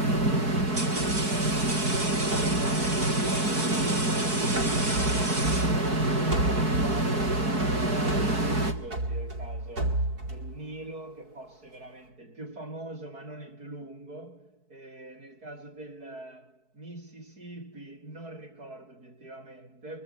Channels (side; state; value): left; late; 4.6 ms